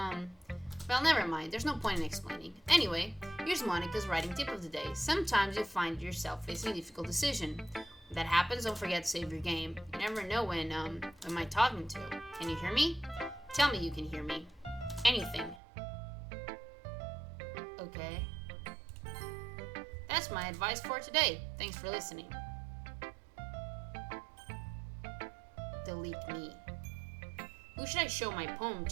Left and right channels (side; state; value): left; drops out; at 15.6 s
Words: well, never mind. There's no point in explaining. Anyway, here's Monica's writing tip of the day. Sometimes you find yourself facing a difficult decision. When that happens, don't forget to save your game. You never know when am I talking to? Can you hear me? Tell me you can hear me. Anything. Okay. That's my advice for today. Thanks for listening. Delete me. Who should I show my poem